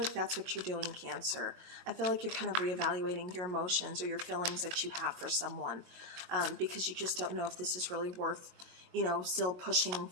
that's what you're doing, Cancer. I feel like you're kind of reevaluating your emotions or your feelings that you have for someone. Because you just don't know if this is really worth still pushing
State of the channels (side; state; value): left; late; 22 ms